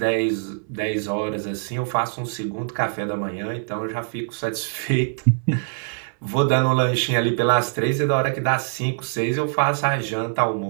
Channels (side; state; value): left; silent; digital silence